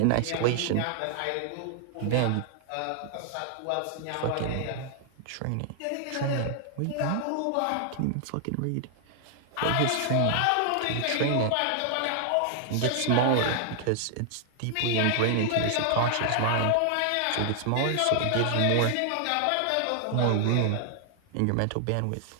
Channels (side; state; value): both; different; correlation 0.00